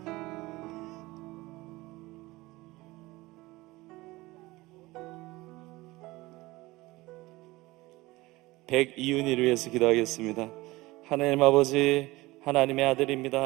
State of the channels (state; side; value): quieter; left; 20.4 dB